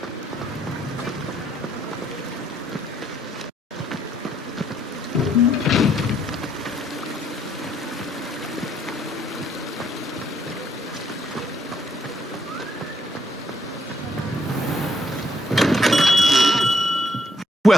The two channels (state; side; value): normal; both; correlation 0.70